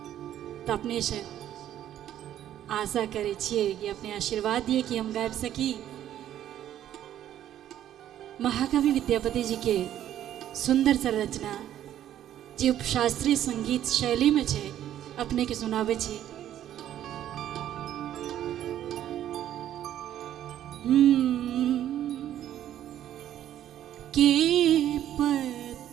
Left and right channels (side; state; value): left; quieter; 11.5 dB